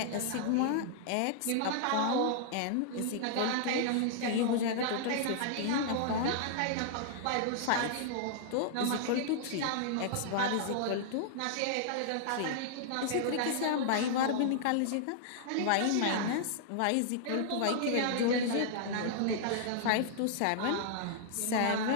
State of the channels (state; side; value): different; both; correlation -0.01